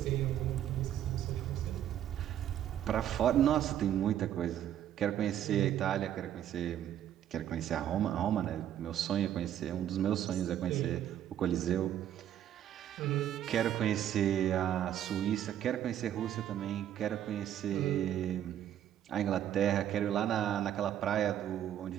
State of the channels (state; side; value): quieter; left; 10.9 dB